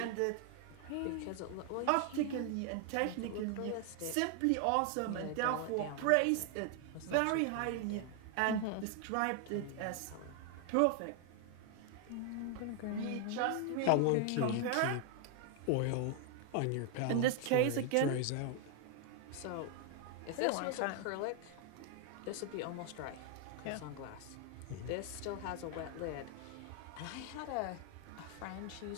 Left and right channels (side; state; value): both; different; correlation 0.00